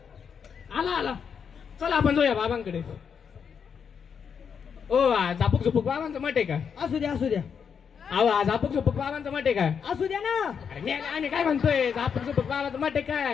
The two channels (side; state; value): right; quieter; 6.9 dB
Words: आला आला चला आपण जाऊया बाबांकडे. ओ झापूक झुपूक बाबांचं मठ आहे का. असू द्या असू द्या अहो झापूक झुपूक बाबांचं मठ आहे का. असू द्या ना. अरे आम्ही काय म्हणतोय झापूक झुपूक बाबांचं मठ आहे